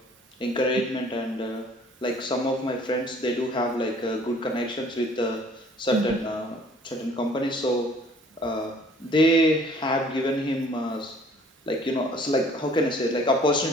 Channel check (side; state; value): both; normal; correlation 0.55